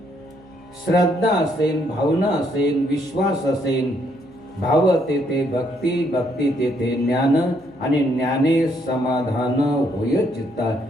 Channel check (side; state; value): right; noise; hum, 29 dB below the sound